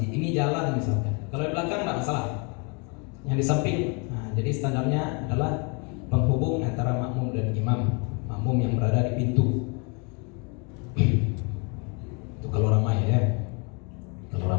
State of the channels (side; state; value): right; quieter; 33.9 dB